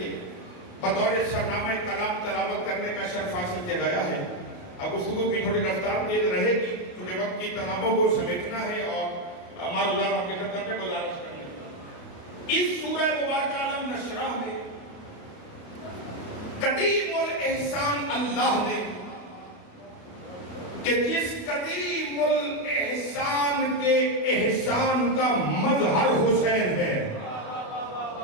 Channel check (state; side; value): late; right; 28 ms